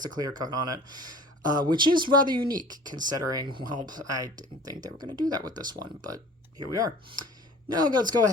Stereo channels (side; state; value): both; normal; correlation 0.45